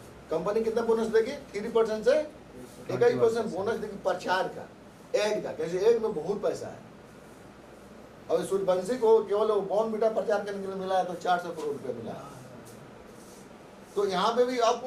कंपनी कितना बोनस देगी? 3% से 21% बोनस देगी प्रचार का, ऐड का। कैसे? ऐड में बहुत पैसा है। और सूर्यवंशी को केवल बॉर्नविटा प्रचार करने के लिए मिला है तो 400 करोड़ रुपया मिला है। तो यहाँ पे भी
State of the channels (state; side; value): identical; both; correlation 1.00